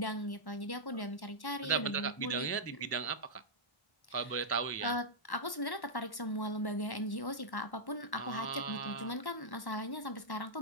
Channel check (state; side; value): late; right; 1.1 ms